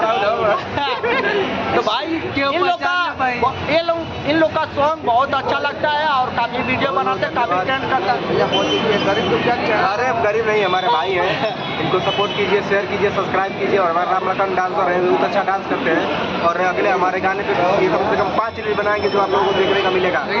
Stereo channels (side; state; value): both; identical; correlation 1.00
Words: तो भाई इन लोग का सॉन्ग बहुत अच्छा लगता है और काफी वीडियो बनाते हैं, काफी ट्रेंड करता है। गरीब तो क्या? अरे गरीब नहीं, हमारे भाई हैं, इनको सपोर्ट कीजिए, शेयर कीजिए, सब्सक्राइब कीजिए। और हमारे रामलखन डांसर हैं, बहुत अच्छा डांस करते हैं और अगले हमारे गाने पे कम से कम 5 रील बनाएंगे जो आप लोगों को देखने का मिलेगा।